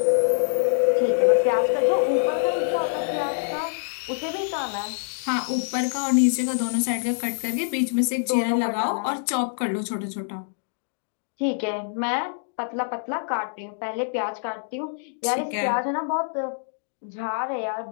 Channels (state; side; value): silent; right; digital silence